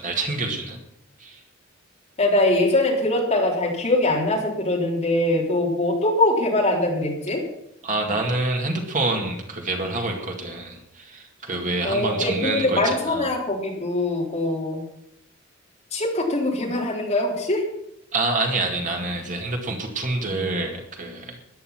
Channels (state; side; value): normal; both; correlation 0.19